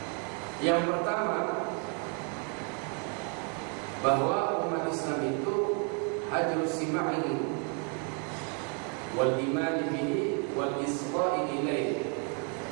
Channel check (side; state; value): left; quieter; 39.0 dB